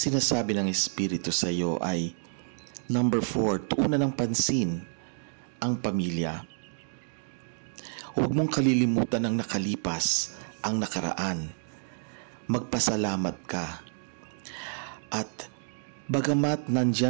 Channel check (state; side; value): silent; left; digital silence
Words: ng Espiritu sa iyo ay number 4, tuunan ng pansin ang pamilya. Huwag mong kalilimutan ang nakalipas, ang nakaraan. Magpasalamat ka. At bagamat